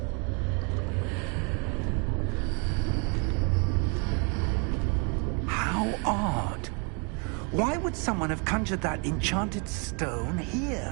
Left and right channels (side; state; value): left; quieter; 35.1 dB